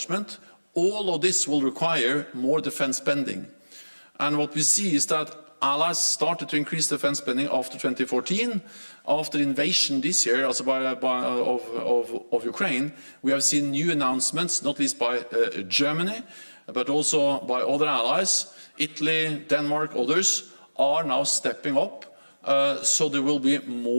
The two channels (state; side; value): inverted; both; correlation -1.00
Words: All of this will require more defense spending. And what we see is that allies started to increase defense spending after 2014. After the invasion this year of Ukraine, we have seen new announcements, not least by Germany, but also by other allies. Italy, Denmark, others are now stepping up. So there will be